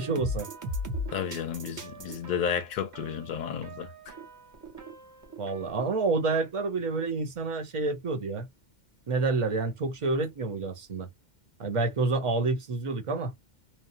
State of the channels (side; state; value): right; late; 2.1 ms